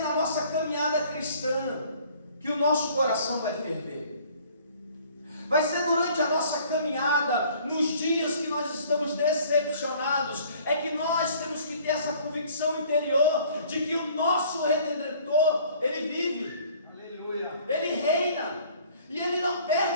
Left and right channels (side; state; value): both; inverted; correlation -0.55